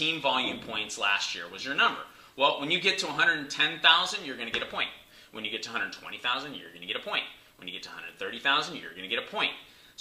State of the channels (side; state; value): both; identical; correlation 1.00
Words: volume points last year was your number. Well, when you get to 110,000, you're going to get a point. When you get to 120,000, you're going to get a point. When you get to 130,000, you're going to get a point.